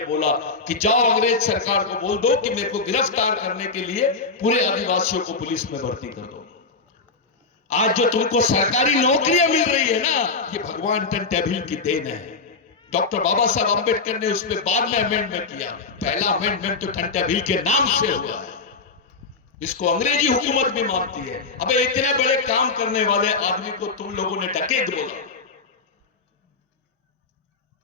बोला कि जाओ अंग्रेज सरकार को बोल दो कि मेरे को गिरफ्तार करने के लिए पूरे आदिवासियों को पुलिस में भर्ती कर दो। आज जो तुमको सरकारी नौकरियां मिल रही है ना, ये भगवान टंट्या भील की देन है। डॉक्टर बाबा साहब अंबेडकर ने उसमें बाद में अमेंडमेंट किया। पहला अमेंडमेंट तो टंट्या भील के नाम से हुआ है। इसको अंग्रेजी हुकूमत भी मानती है। अबे इतने बड़े काम करने वाले आदमी को तुम लोगों ने डकैत बोला,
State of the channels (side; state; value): right; quieter; 4.3 dB